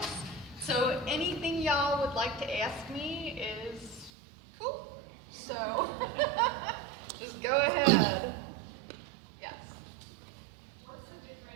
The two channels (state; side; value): drops out; left; at 4.1 s